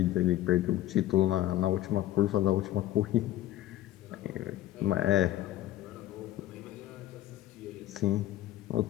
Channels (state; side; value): quieter; right; 14.0 dB